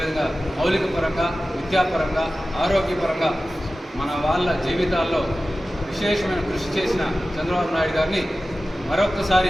మౌలిక పరంగా, విద్యాపరంగా, ఆరోగ్యపరంగా మన వాళ్ళ జీవితాల్లో విశేషమైన కృషి చేసిన చంద్రబాబు నాయుడు గారిని మరొక్కసారి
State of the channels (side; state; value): both; normal; correlation 0.95